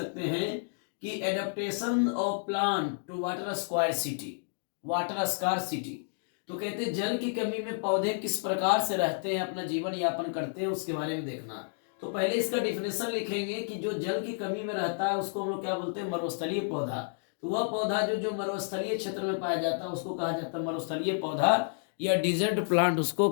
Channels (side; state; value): right; silent; digital silence